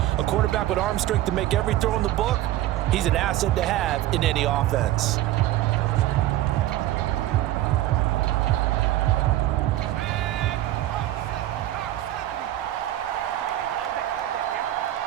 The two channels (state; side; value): quieter; left; 14.5 dB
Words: A quarterback with arm strength to make every throw in the book, he's an asset to have in any offense.